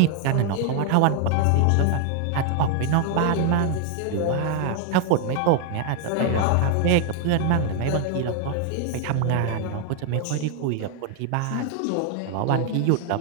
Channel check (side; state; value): both; different; correlation 0.01